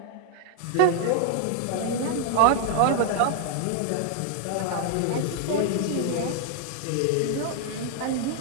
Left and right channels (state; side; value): different; both; correlation 0.00